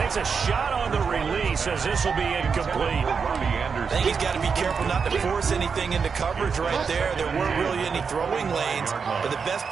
a shot on the release as this will be incomplete. I think he's got to be careful not to force anything into coverage right there. There weren't really any throwing lanes. But the best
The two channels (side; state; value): left; quieter; 5.7 dB